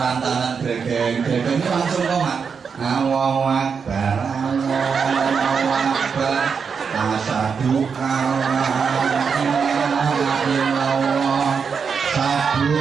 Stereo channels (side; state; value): left; quieter; 6.0 dB